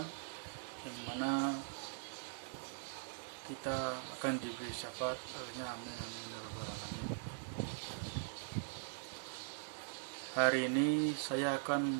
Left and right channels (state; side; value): silent; left; digital silence